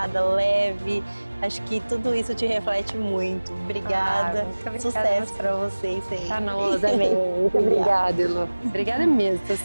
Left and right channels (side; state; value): both; inverted; correlation -1.00